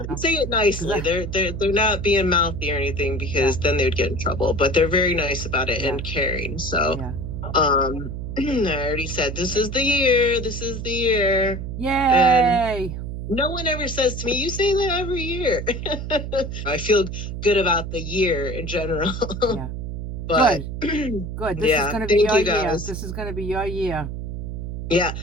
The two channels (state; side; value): noise; right; hum, 6 dB below the sound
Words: And say it nicely. They're not being mouthy or anything, because then they'd get in trouble, but they're very nice about it and caring. So, I already said, this is the year. Yay. And no one ever says to me, you say that every year. I feel good about the year in general. Yeah. But good. This is going to be your year. This is going to be your year. Yeah.